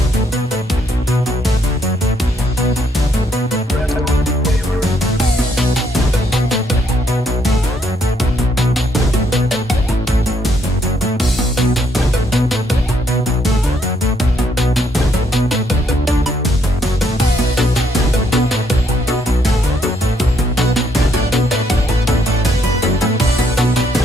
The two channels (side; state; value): both; normal; correlation 0.72